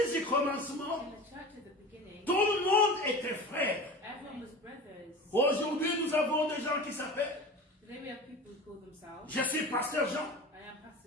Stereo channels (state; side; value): normal; both; correlation 0.34